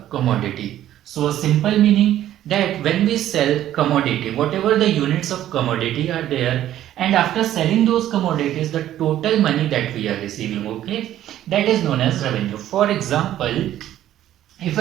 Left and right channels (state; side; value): quieter; left; 12.4 dB